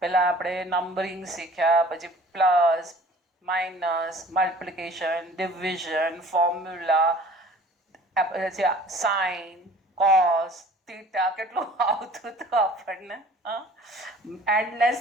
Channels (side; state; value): both; normal; correlation 0.48